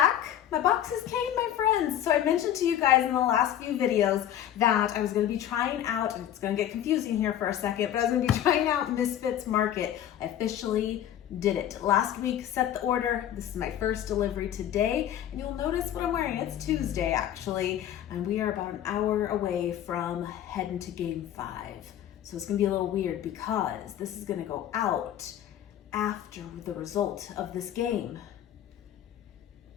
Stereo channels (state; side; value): quieter; right; 11.1 dB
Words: My boxes came, my friends. So I mentioned to you guys in the last few videos that I was going to be trying out, and it's going to get confusing here for a second, but I was going to be trying out Misfits Market. I officially did it. Last week, set the order. This is my first delivery today, and you'll notice what I'm wearing. It's Tuesday, actually, and we are about an hour away from heading to Game 5. So it's going to be a little weird because this is going to go out after the result of this game.